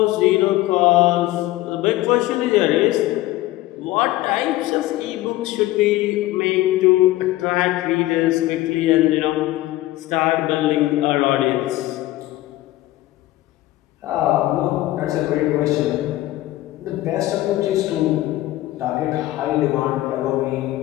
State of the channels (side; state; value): right; quieter; 16.6 dB